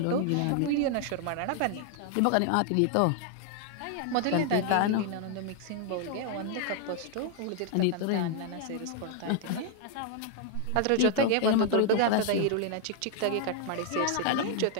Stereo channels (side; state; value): both; different; correlation 0.00